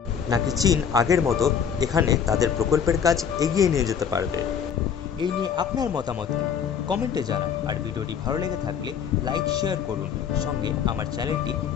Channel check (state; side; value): quieter; right; 7.6 dB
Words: নাকি চীন আগের মতো এখানে তাদের প্রকল্পের কাজ এগিয়ে নিয়ে যেতে পারবে? এই নিয়ে আপনার মতামত কি কমেন্টে জানান। আর ভিডিওটি ভালো লেগে থাকলে লাইক শেয়ার করুন, সঙ্গে আমার চ্যানেলটি